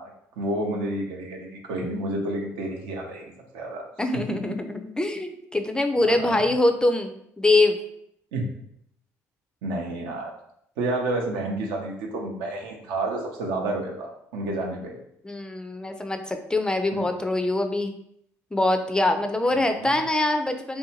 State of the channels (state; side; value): normal; both; correlation 0.75